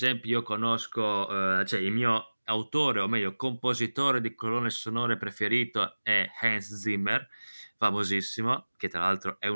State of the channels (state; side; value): inverted; both; correlation -1.00